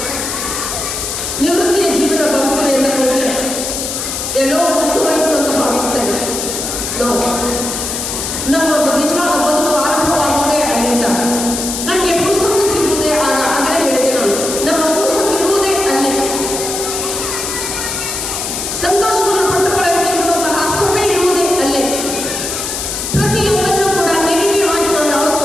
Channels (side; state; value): left; noise; hiss, 4 dB below the sound